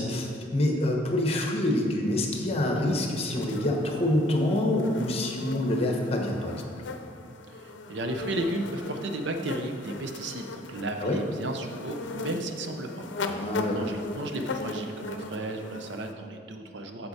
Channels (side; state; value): both; normal; correlation 0.57